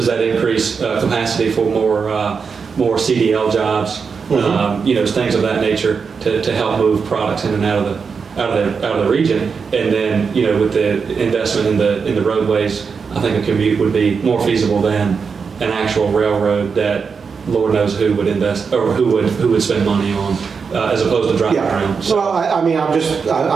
that increase capacity for more CDL jobs, things of that nature to help move products in and out of the region, and then with the investment in the roadways, I think a commute would be more feasible than an actual railroad that Lord knows who would invest or who would spend money on, as opposed to driving around. So, well, I'm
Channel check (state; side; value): quieter; left; 5.6 dB